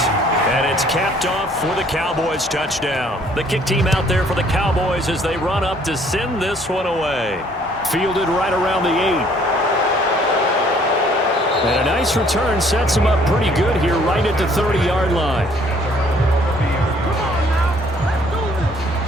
And it's capped off for the Cowboys touchdown. The kick team out there for the Cowboys as they run up to send this one away. Fielded right around the 8. And a nice return sets him up pretty good here right at the 30-yard line.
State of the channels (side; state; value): both; normal; correlation 0.61